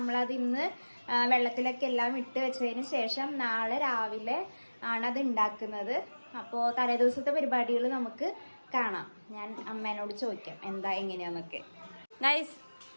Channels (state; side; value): inverted; both; correlation -1.00